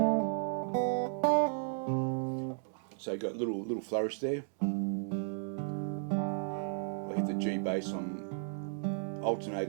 So you've got little flourish there. I hit the G bass. I'm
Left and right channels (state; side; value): silent; left; digital silence